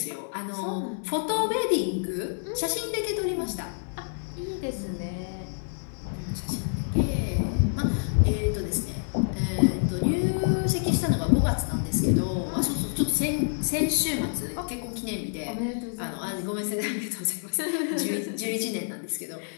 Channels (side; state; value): right; silent; 60 dB below the other